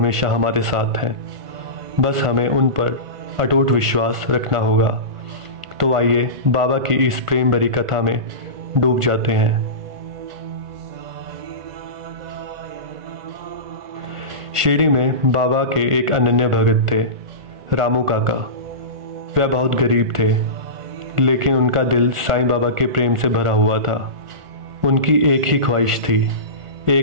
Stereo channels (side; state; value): left; late; 1.5 ms